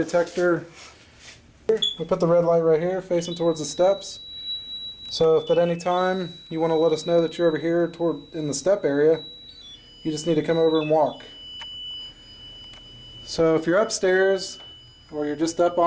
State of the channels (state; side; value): identical; both; correlation 1.00